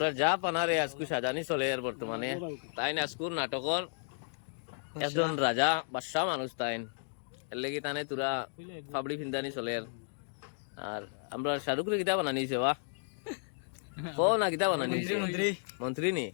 যা পানারে আজকু সাজানি চলে আর বর্তমানে তাই আজকুর নাটকর একজন রাজা বাদশাহ মানুষ তাইন এর লেগে তানে তোরা ফাবড়ি ফিন্দানি চলে আর আমরা শাহরুখরে কিতা বানানিছে বা কো না কিতা বানানিছে মন্ত্রী নি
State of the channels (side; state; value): right; silent; digital silence